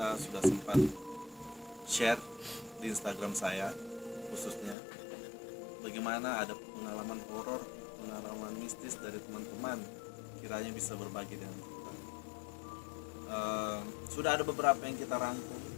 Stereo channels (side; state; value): right; drops out; at 4.8 s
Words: sudah sempat share di Instagram saya khususnya bagaimana ada pengalaman horor, pengalaman mistis dari teman-teman, kiranya bisa berbagi dengan kita. Sudah ada beberapa yang kita rangkum